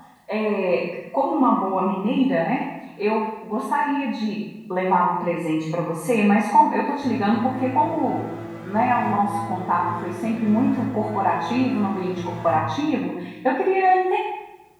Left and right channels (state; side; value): identical; both; correlation 1.00